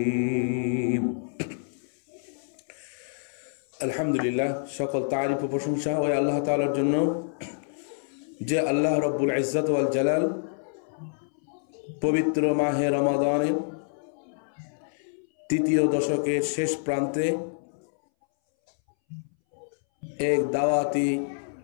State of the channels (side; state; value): right; silent; 60 dB below the other